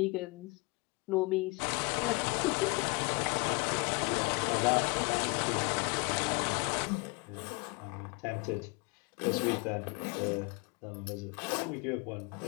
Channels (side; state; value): right; quieter; 27.7 dB